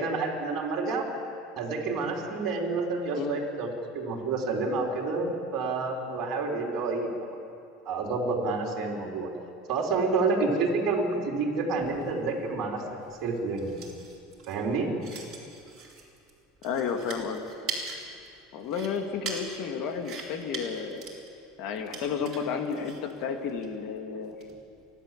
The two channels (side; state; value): both; normal; correlation 0.31